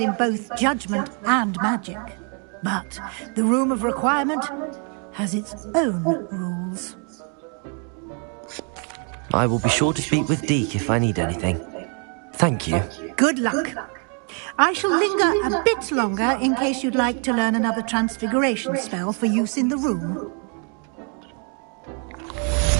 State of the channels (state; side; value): quieter; left; 39.1 dB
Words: both judgment and magic. But the Room of Requirement has its own rules. I will be sure to speak with Deek if I need anything. Thank you. Good luck. I shall linger a bit longer in case you'd like to learn another transfiguration spell for use in the room.